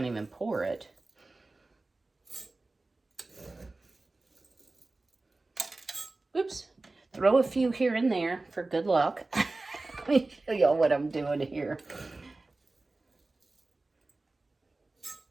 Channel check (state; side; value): quieter; left; 3.2 dB